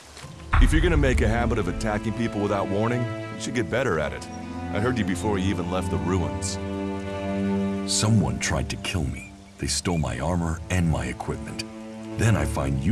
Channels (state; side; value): identical; both; correlation 1.00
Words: If you're gonna make a habit of attacking people without warning, you should get better at it. I heard you before you even left the ruins. Someone tried to kill me. They stole my armor and my equipment. Then I find